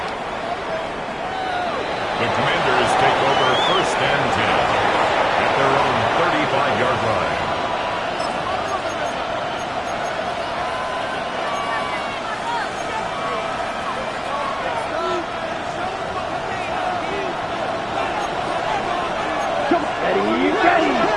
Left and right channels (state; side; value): identical; both; correlation 1.00